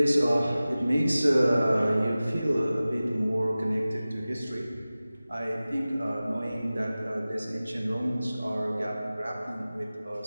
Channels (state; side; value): inverted; both; correlation -0.97